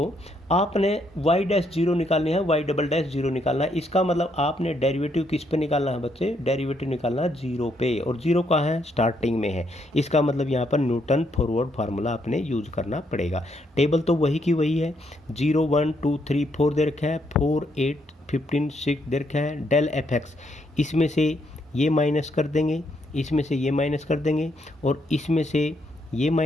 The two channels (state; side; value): normal; both; correlation 0.74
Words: आपने y डैश जीरो निकालनी है, y डबल डैश जीरो निकालना है। इसका मतलब आपने डेरिवेटिव किस पे निकालना है बच्चे? डेरिवेटिव निकालना है जीरो पे, और जीरो कहाँ है? स्टार्टिंग में है। इसका मतलब यहाँ पर न्यूटन फॉरवर्ड फार्मूला आपने यूज करना पड़ेगा। टेबल तो वही की वही है, 0 1 2 3 4 दे रखा है, 4 8 15 6 दे रखा है। डेल एफ एक्स, इसमें से ये माइनस कर देंगे, इसमें से ये माइनस कर देंगे, और इसमें से ये